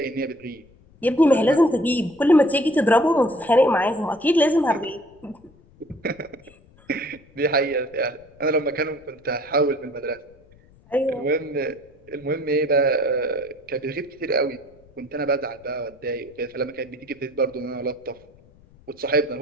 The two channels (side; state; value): left; noise; rumble, 28 dB below the sound